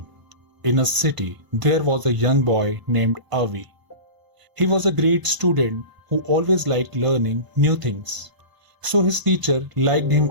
in a city, there was a young boy named Avi. He was a great student who always liked learning new things, so his teacher liked him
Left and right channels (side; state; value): left; late; 1.0 ms